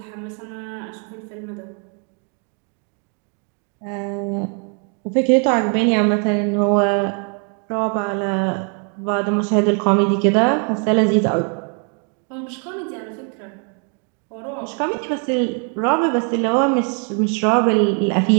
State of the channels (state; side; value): quieter; left; 38.5 dB